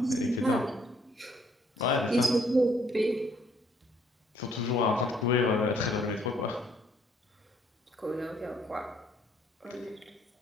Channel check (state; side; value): normal; both; correlation 0.65